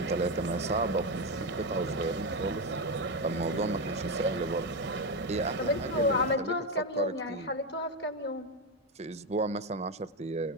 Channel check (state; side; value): normal; both; correlation 0.10